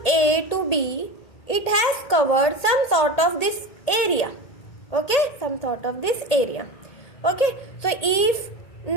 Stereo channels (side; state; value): right; late; 1.8 ms